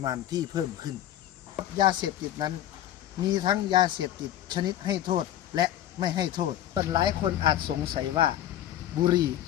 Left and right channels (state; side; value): quieter; right; 12.2 dB